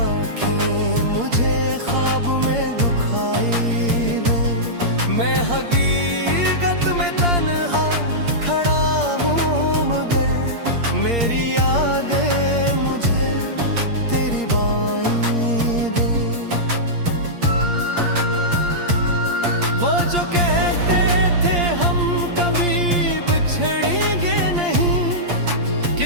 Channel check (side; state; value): left; late; 8.6 ms